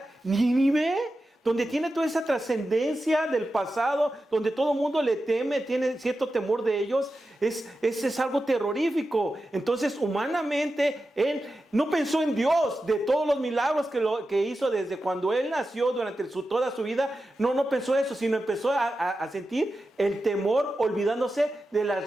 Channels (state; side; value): normal; both; correlation 0.91